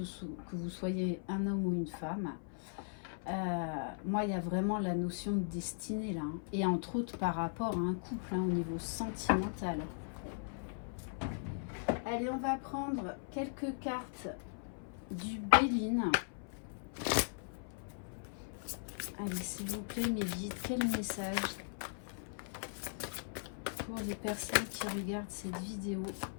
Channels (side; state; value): right; silent; 52 dB below the other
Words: vous soyez un homme ou une femme. Moi, il y a vraiment la notion de destinée là, hein, et entre autres par rapport à un couple, hein, au niveau sentimental. Allez, on va prendre quelques cartes du Béline. Allez, s'il vous plaît, mes guides, quel message pour les personnes qui regardent cette vidéo?